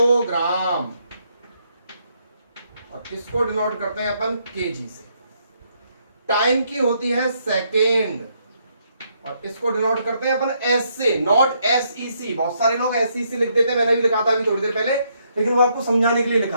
और इसको डिनोट करते हैं अपन केजी से। टाइम की होती है सेकेंड और इसको डिनोट करते हैं अपन एस से, नॉट SEC। बहुत सारे लोग SEC लिख देते हैं, मैंने भी लिखा था अभी थोड़ी देर पहले, लेकिन वो आपको समझाने के लिए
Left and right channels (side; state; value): both; inverted; correlation -0.74